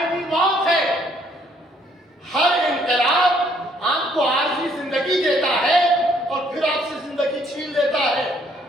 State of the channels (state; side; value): normal; both; correlation 0.66